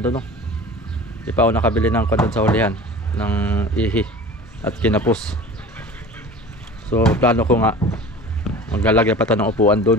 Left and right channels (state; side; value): normal; both; correlation 0.39